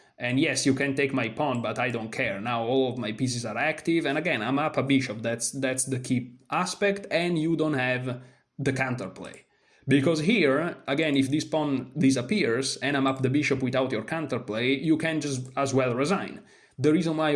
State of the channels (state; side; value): identical; both; correlation 1.00